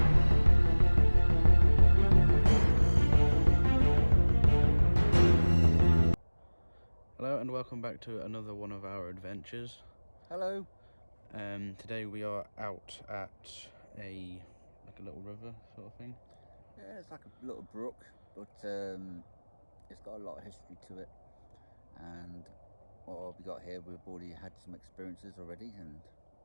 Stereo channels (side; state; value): both; inverted; correlation -1.00